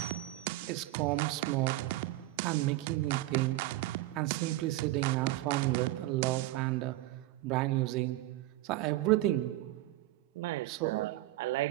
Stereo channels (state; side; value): quieter; left; 17.3 dB